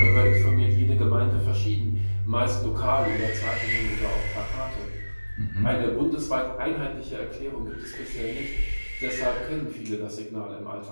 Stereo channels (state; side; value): inverted; both; correlation -1.00